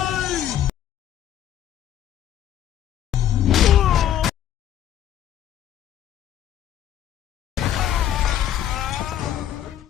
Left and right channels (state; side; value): quieter; right; 11.1 dB